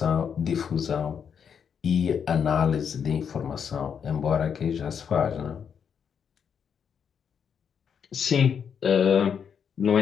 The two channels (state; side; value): quieter; right; 7.3 dB